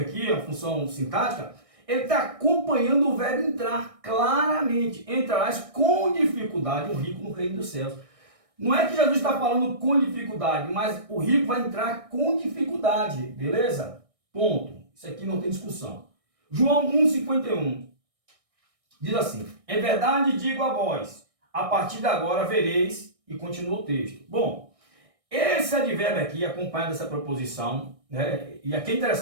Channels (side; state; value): left; late; 1.6 ms